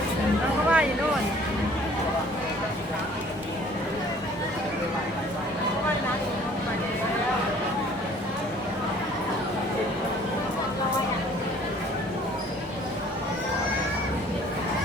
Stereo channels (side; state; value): both; normal; correlation 0.54